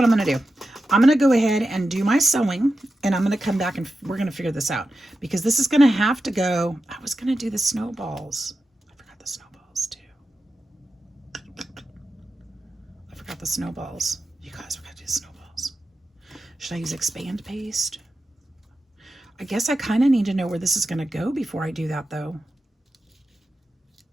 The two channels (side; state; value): both; normal; correlation 0.91